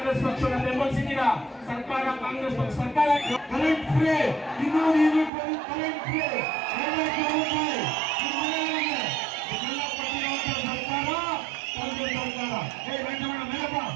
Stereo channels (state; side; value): drops out; left; at 5.3 s